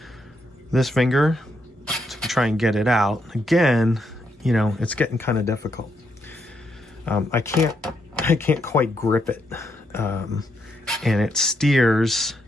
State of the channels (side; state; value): both; normal; correlation 0.78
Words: this finger to try and get it out. Again, you know, it's getting kind of difficult. I can't quite grip it, and it steers